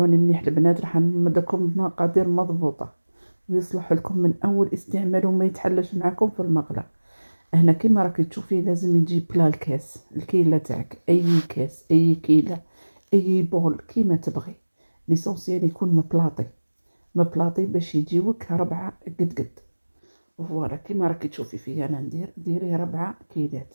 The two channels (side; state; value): both; inverted; correlation -1.00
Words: مليح البنات، راح نمدكم بمقادير مضبوطة ويصلح لكم من اول استعمال وما يتحلش معكم في المقله. هنا كيما راكي تشوفي لازم يجي بلا الكاس، الكيلة تاعك، اي كاس، اي كيلة، اي بول كيما تبغي. ليسونسيال يكون مبلاطي باش يجيوك 4 قد. فوالا كيما راكي تشوفي فيا انا ندير، ديري 4 كيلات.